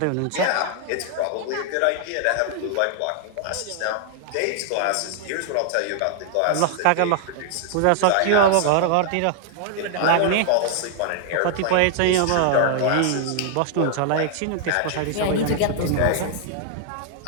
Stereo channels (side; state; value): both; different; correlation 0.00